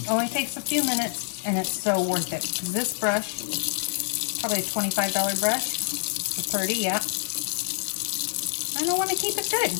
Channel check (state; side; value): silent; right; digital silence